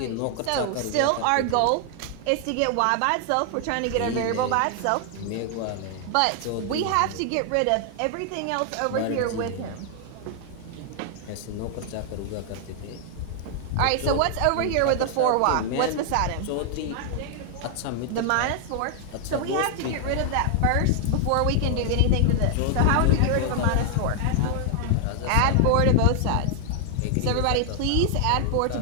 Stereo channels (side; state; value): both; different; correlation 0.00